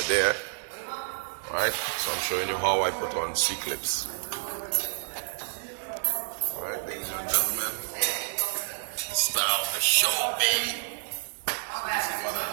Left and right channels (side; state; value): left; silent; digital silence